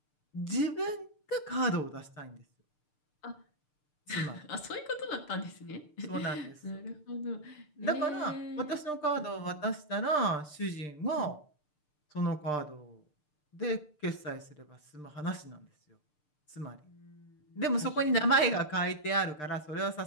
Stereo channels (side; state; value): right; late; 6.7 ms